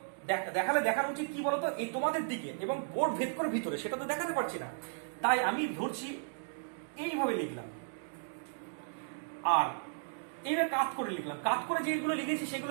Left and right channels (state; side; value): silent; left; digital silence